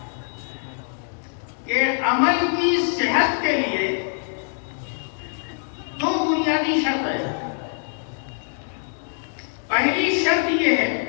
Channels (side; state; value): right; silent; 59 dB below the other